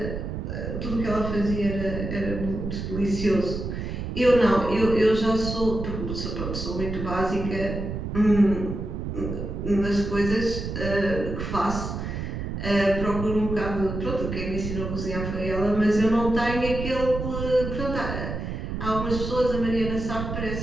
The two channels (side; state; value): right; noise; rumble, 5 dB below the sound